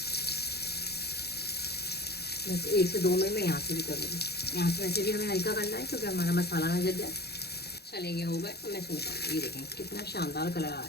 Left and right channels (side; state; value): right; late; 0.47 ms